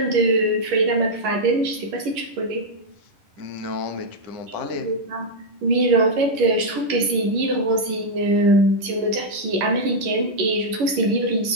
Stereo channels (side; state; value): left; late; 11 ms